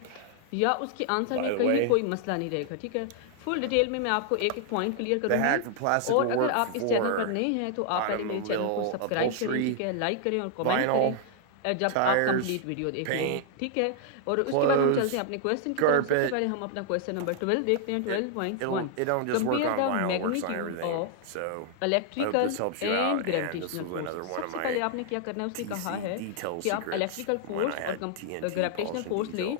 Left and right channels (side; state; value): both; different; correlation -0.01